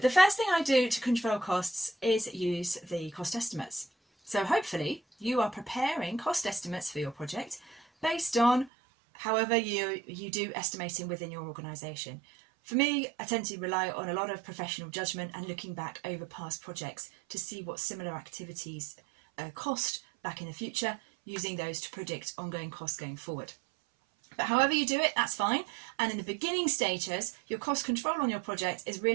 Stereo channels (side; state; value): left; drops out; at 8.7 s